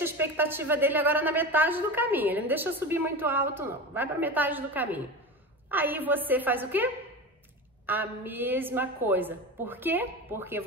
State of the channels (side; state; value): both; normal; correlation 0.27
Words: a expectativa dele agora na metade do caminho, ele não deixa subir muito alto não, vai pra metade do caminho. Aí você faz o quê? A mesma coisa. Por quê? Porque